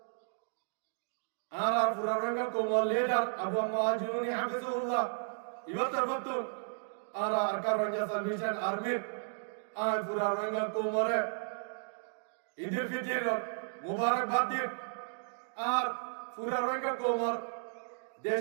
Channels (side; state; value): left; silent; digital silence